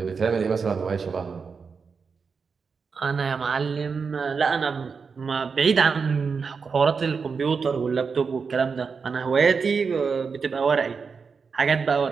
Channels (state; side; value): quieter; left; 5.4 dB